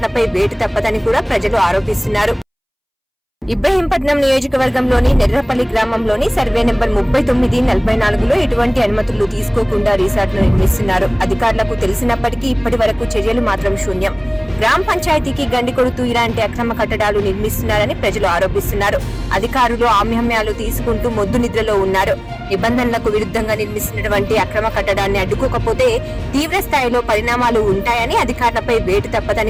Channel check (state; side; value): identical; both; correlation 1.00